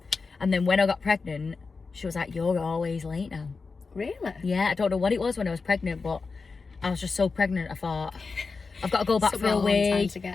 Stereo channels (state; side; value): quieter; right; 4.5 dB